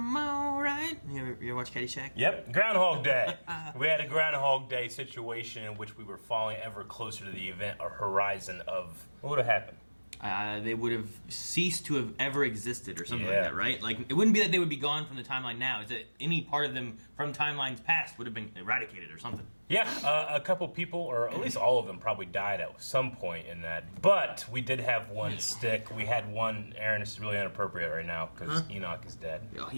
alright. You ever watch Caddyshack? Yep, Groundhog Day. We had a Groundhog Day situation in which we were falling ever closer to the event or horizon of... What would have happened? They would have ceased to have ever existed or something Yeah. like that, right? Like, it wouldn't be that they would be gone from the timeline now. It's that any part of them from timelines past would have been eradicated or something. Yeah, a couple people, or at least all of them, probably died at some point in that. But we did have one stick. We had one... Aaron, this is really inappropriate right now because Enoch is dead. Oh,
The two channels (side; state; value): both; inverted; correlation -1.00